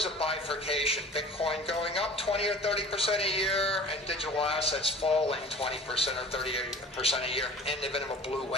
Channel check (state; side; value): normal; both; correlation 0.42